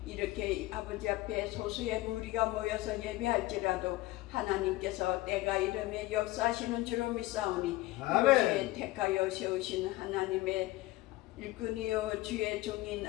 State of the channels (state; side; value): quieter; right; 18.5 dB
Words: 이렇게 아버지 앞에 소수의 무리가 모여서 예배할지라도 하나님께서 때가 이름에 역사하시는 줄로 믿사오니 이곳에 택하여 세우신 하나님의 일꾼이요 주의 종인